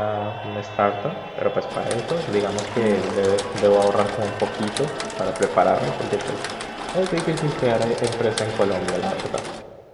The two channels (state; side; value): identical; both; correlation 1.00